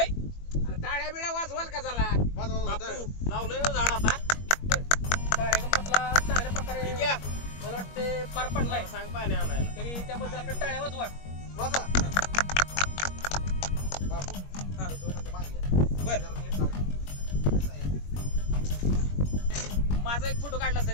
टाळ्या बिळ्या वाजवाल का जरा. वाजवा, वाजवा. बापू लावलंय ना झाड आता. कार्यक्रम आपला चांगल्या प्रकारे ठीक आहे. मला वाटते पार पडलाय. मला सांग पाणी आणायला. तरी त्याबद्दल आपल्या टाळ्या वाजवा. वाजवा. बापू, 2 मिनिटं मागे या. बर. जरा नीट लावा. असं आहे. माझा एक फोटो काढला असता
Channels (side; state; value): right; late; 21 ms